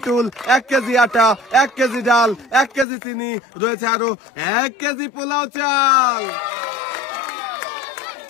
টুল, 1 কেজি আটা, 1 কেজি ডাল, 1 কেজি চিনি, রয়েছে আরো 1 কেজি পোলাও চাল।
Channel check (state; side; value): drops out; right; at 2.9 s